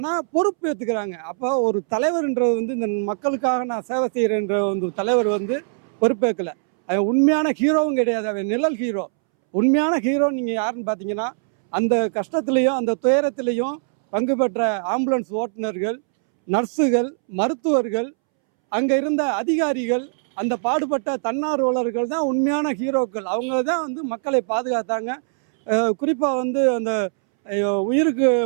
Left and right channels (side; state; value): left; silent; 65 dB below the other